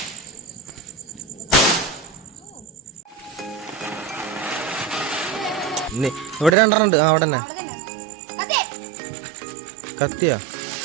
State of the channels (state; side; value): drops out; left; at 6.6 s